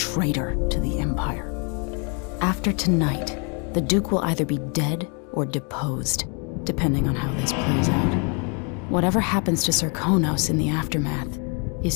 to the Empire. After tonight, the Duke will either be dead or deposed, depending on how this plays out. Whatever happens to Serkonos in the aftermath is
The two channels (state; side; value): quieter; right; 36.0 dB